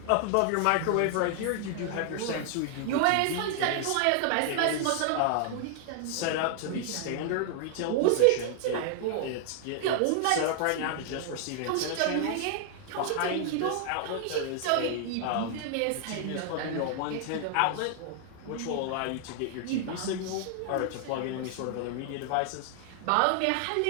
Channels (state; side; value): different; both; correlation 0.00